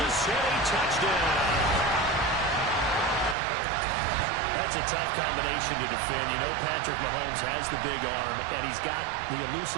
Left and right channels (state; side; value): drops out; left; at 3.4 s